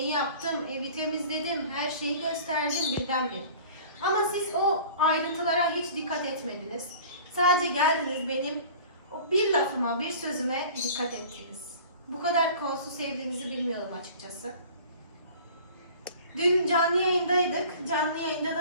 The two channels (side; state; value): both; inverted; correlation -0.44